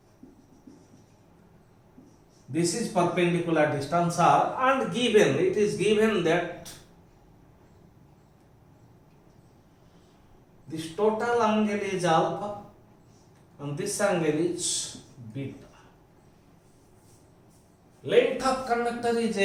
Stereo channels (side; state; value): both; identical; correlation 1.00